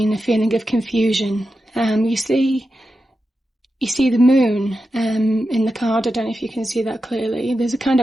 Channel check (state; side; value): normal; both; correlation 0.90